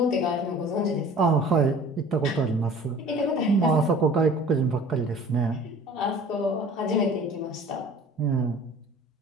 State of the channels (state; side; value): normal; both; correlation 0.46